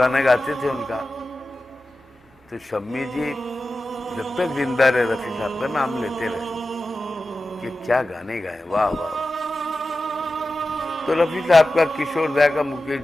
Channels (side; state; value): both; normal; correlation 0.94